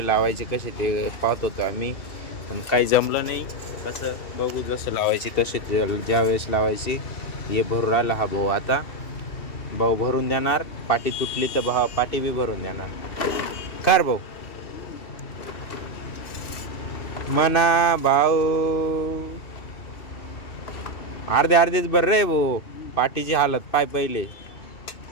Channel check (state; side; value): late; right; 2.7 ms